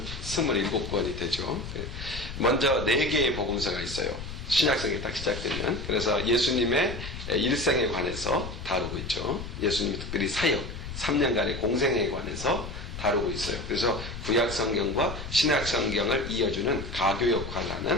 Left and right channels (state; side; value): noise; left; rumble, 9 dB below the sound